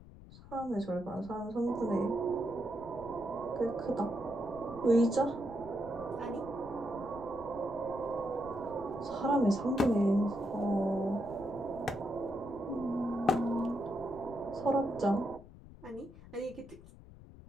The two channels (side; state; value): left; noise; rumble, 18 dB below the sound